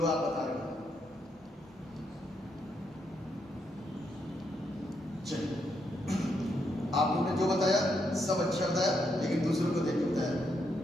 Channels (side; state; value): both; normal; correlation 0.78